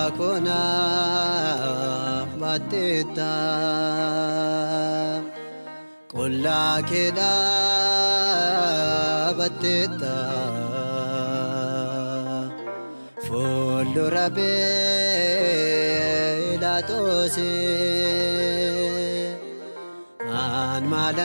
ባቴታ ቆላ ኬዳ ባቴታ ፉልዱረ ጲላጦስ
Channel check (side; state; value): both; inverted; correlation -1.00